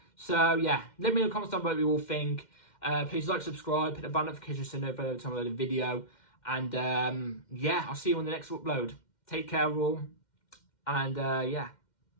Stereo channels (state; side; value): late; right; 2.1 ms